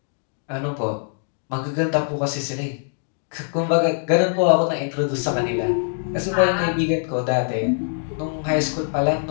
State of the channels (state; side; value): silent; right; digital silence